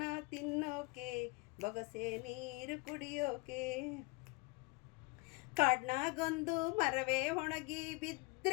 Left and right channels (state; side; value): quieter; right; 27.7 dB